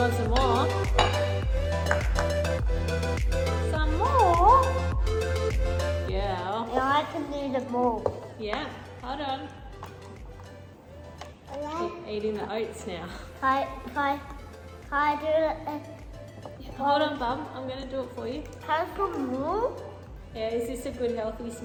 some more? Some more? Yeah. Yeah, I can do the more. Yeah. Hold on. Keep eating the oats now. Can I do it? Hold on, Bum. I'm going to do it for you. Can I put more? Yeah, is this a good healthy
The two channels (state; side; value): identical; both; correlation 1.00